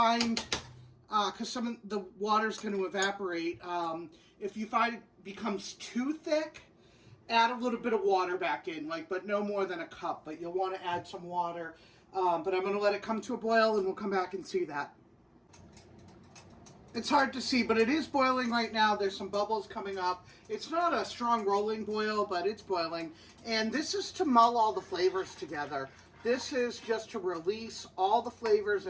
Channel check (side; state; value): both; identical; correlation 1.00